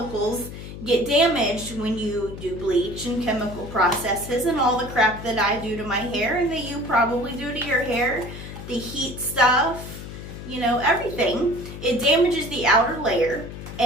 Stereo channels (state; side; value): noise; left; hum, 11 dB below the sound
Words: get damaged when you do bleach and chemical processes and all the crap that I do to my hair and that you probably do to your hair, the heat stuff, everything. It damages the outer layer